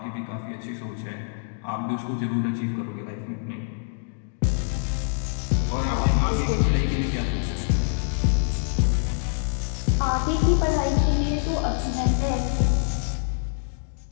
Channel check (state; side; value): silent; right; 62 dB below the other